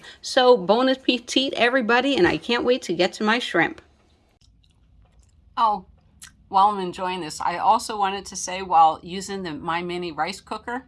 So bon appetit, everybody, and I can't wait to get to my shrimp. Oh, while I'm enjoying this, I also wanted to say while using my mini rice cooker,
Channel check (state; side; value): identical; both; correlation 1.00